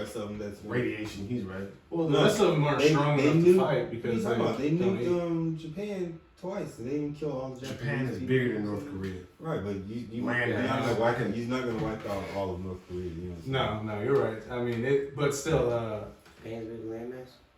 of them that's Radiation, he's right. Well, the rest of them aren't strong enough to fight because they don't eat. nuked Japan twice. They didn't kill all the Japanese. Japan is people. bigger than North Korea. Right, but you're Land not gonna wipe out all of North Korea. You know what I'm saying? No, you're right. I mean, but still, Japan's big landmass?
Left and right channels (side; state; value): both; identical; correlation 1.00